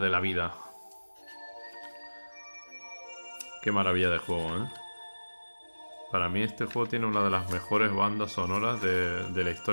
la vida. Qué maravilla de juego, ¿eh? Para mí este juego tiene una de las mejores bandas sonoras de la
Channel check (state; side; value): inverted; both; correlation -1.00